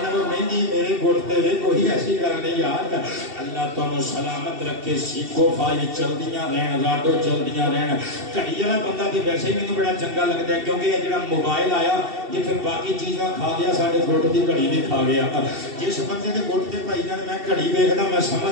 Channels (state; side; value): late; left; 2.7 ms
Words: نال مہندی میرے گھٹ تے کوئی ایسی گل نہیں یار اللہ تانوں سلامت رکھے سیکھو فائل چلدیاں رہن راڈو چلدیاں رہن کڑی والا بندہ تے ویسے ہی مینوں بڑا چنگا لگتا ہے کیونکہ یہ جڑا موبائل آیا یہ پھر باقی چیزاں کھا گیا ساڈے گھٹ دی گھڑی بھی کھا گیا جس بندے دے گھٹ تے بھائی جان میں گھڑی ویکھدا میں